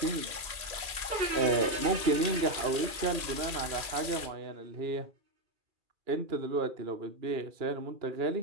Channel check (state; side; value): late; left; 2.4 ms